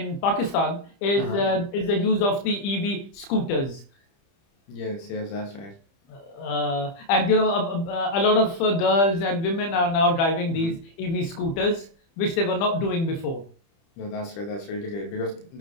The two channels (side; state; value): right; late; 30 ms